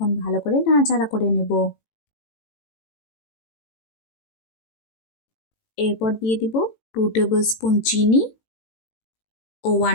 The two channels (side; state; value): right; late; 18 ms